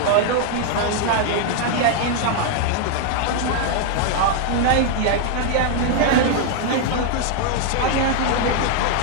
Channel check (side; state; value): both; different; correlation 0.00